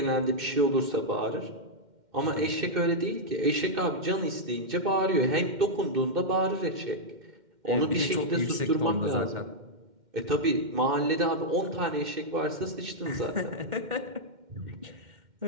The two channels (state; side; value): late; left; 2.1 ms